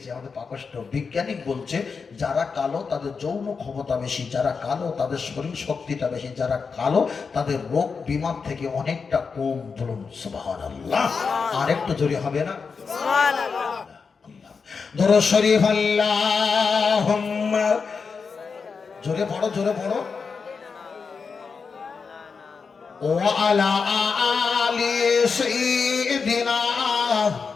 আমাদের পাকষ্ট। বিজ্ঞানিক বলছে যারা কালো তাদের যৌন ক্ষমতা বেশি, যারা কালো তাদের শরীর শক্তিটা বেশি, যারা কালো তাদের রোগ বিমার থেকে অনেকটা কম। বলুন সুবহানাল্লাহ। আর একটু জোরে হবে না? সুবহানাল্লাহ। দরুদ শরীফ আল্লাহুম্মা, জোরে পড়ো, জোরে পড়ো। ওয়া আলা আলি সাইয়্যিদিনা,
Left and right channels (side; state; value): right; quieter; 5.3 dB